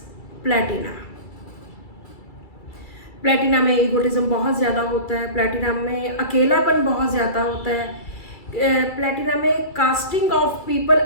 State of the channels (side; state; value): right; late; 2.3 ms